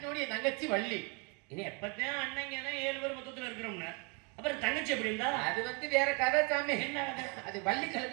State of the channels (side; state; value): left; quieter; 30.1 dB